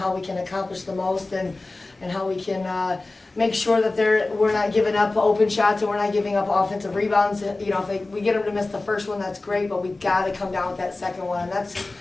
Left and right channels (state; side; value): quieter; right; 3.2 dB